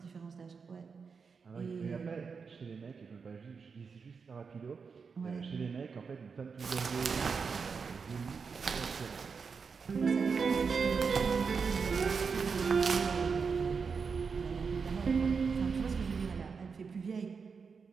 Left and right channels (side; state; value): left; quieter; 5.5 dB